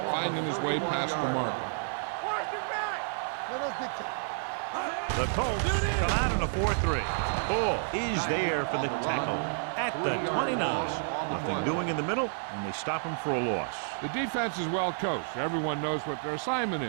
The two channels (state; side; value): silent; left; digital silence